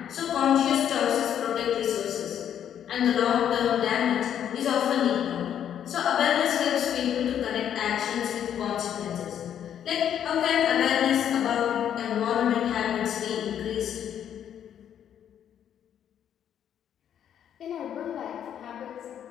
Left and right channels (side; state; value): right; quieter; 9.6 dB